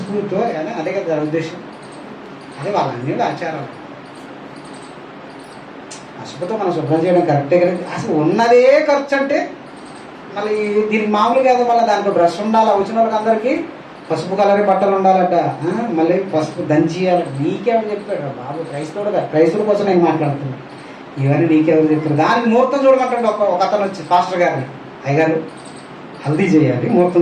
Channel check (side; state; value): both; identical; correlation 1.00